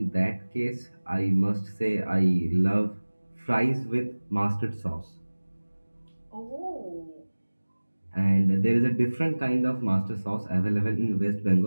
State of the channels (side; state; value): both; inverted; correlation -1.00